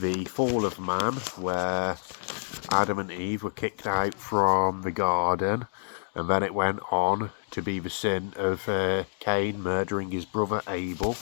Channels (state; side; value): silent; right; 59 dB below the other